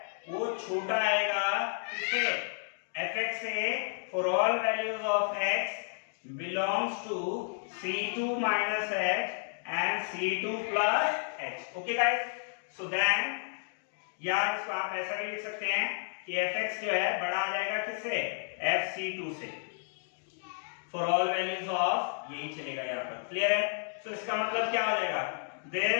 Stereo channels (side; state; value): right; silent; digital silence